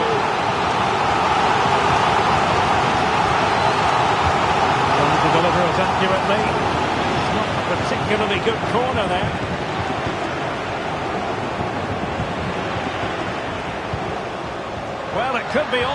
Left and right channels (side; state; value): both; identical; correlation 1.00